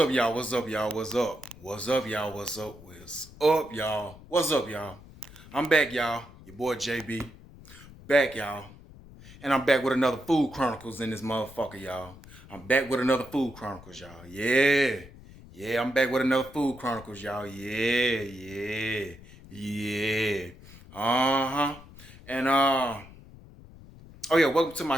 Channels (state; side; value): noise; left; rumble, 20 dB below the sound